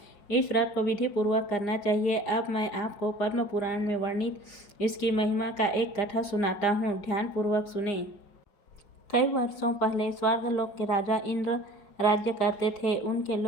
इस व्रत को विधि पूर्वक करना चाहिए। अब मैं आपको पद्म पुराण में वर्णित इसकी महिमा का एक कथा सुनाता हूँ, ध्यान पूर्वक सुने। कई वर्षों पहले स्वर्गलोक के राजा इंद्र राज्य करते थे। उनके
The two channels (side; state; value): right; late; 4.9 ms